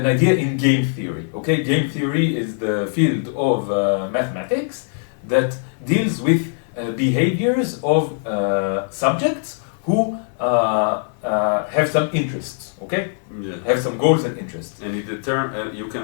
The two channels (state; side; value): silent; right; 65 dB below the other